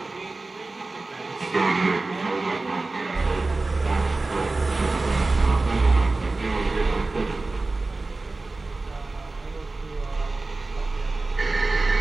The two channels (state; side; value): quieter; left; 3.4 dB